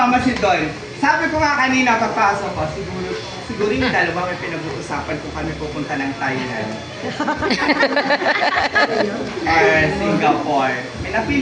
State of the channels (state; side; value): identical; both; correlation 1.00